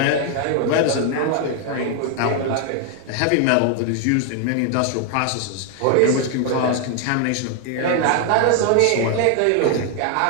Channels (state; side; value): different; both; correlation 0.01